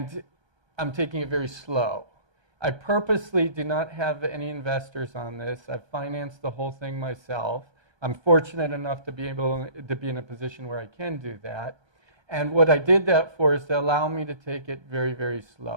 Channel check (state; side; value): late; left; 1.2 ms